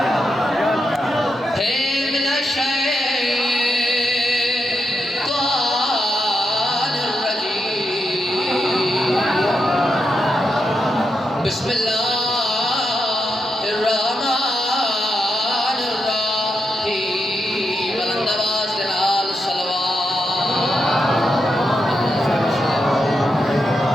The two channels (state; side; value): normal; both; correlation 0.85